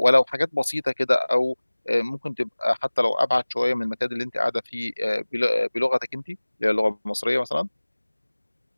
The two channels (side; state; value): both; inverted; correlation -1.00